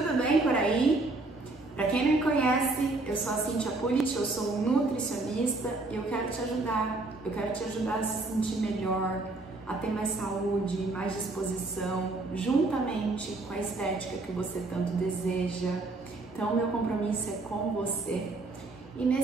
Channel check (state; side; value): quieter; left; 3.2 dB